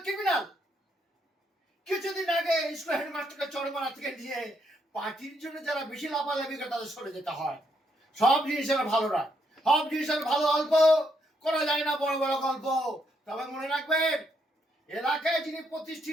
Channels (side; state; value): both; normal; correlation 0.76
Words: ক্রিমিনাল। কিছুদিন আগে স্কুল হেডমাস্টারকে চরমারা থেকে নিয়ে পার্টির জন্য যারা বেশি লাফালাফি করে তাদের সরে যেতে হয়। সব জিনিসের ভালো রাখ, সব জিনিসের ভালো অল্প করা যায় না, বড় বড় গল্প। তবে মনে রাখবেন, এলাকায় যিনি